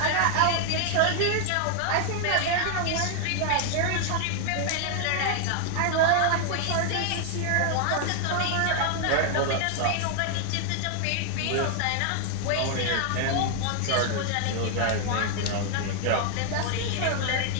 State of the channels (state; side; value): different; both; correlation 0.00